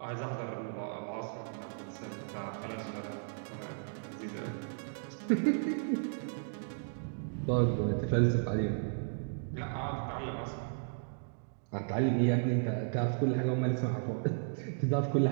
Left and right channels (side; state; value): left; silent; digital silence